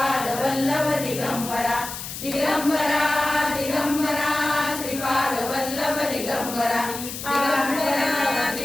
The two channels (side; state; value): left; noise; hiss, 8 dB below the sound